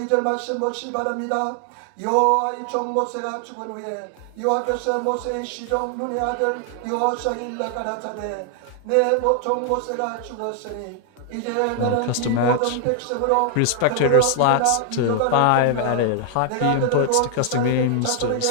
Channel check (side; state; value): both; different; correlation 0.00